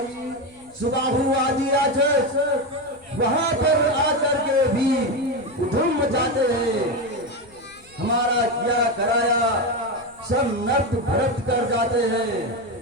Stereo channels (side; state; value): left; noise; rumble, 28 dB below the sound